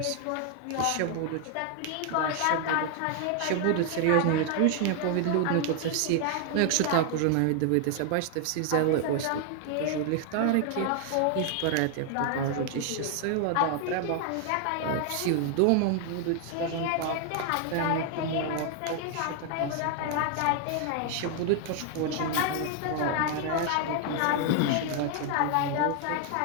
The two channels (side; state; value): both; different; correlation 0.00